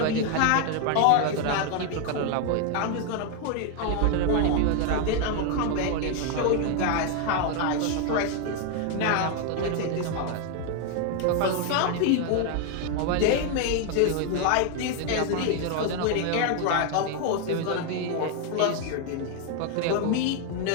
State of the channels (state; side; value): different; both; correlation 0.01